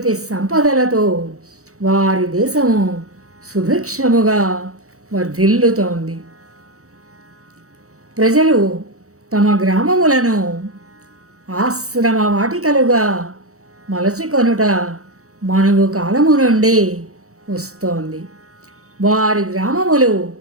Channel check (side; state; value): left; late; 0.65 ms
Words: సంపదలతో వారి దేశము సుభిక్షముగా వర్ధిల్లుతోంది. ప్రజలు తమ గ్రామములను ఆశ్రమ వాటికలుగా మలచుకొనుట మనువు కాలము నుండి వస్తోంది. వారి గ్రామములు